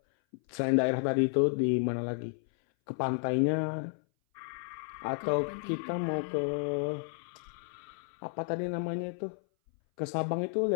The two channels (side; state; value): right; silent; 56 dB below the other